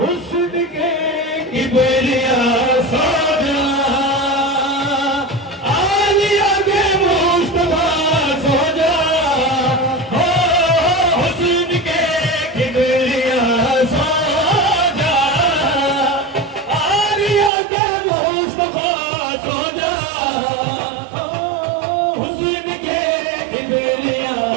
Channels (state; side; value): drops out; left; at 17.5 s